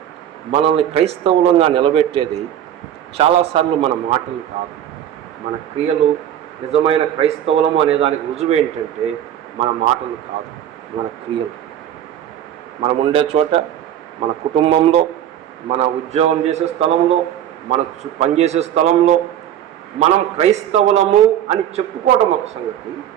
మనల్ని క్రైస్తవులంగా నిలబెట్టేది చాలాసార్లు మన మాటలు కాదు, మన క్రియలు. నిజమైన క్రైస్తవులము అనే దానికి రుజువు ఏంటంటే మన మాటలు కాదు, మన క్రియలు. మనం ఉండే చోట, మన కుటుంబంలో, మన ఉద్యోగం చేసే స్థలంలో, మన పనిచేసే స్థలంలో మనం క్రైస్తవులము అని చెప్పుకోవడం ఒక సంగతి,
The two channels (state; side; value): quieter; left; 10.7 dB